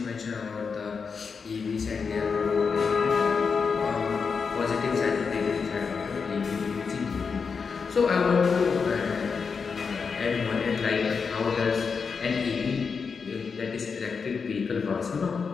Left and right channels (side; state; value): right; quieter; 5.5 dB